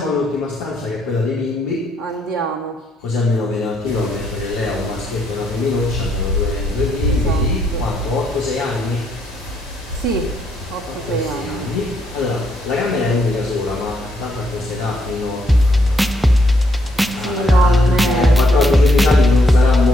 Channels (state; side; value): normal; both; correlation 0.74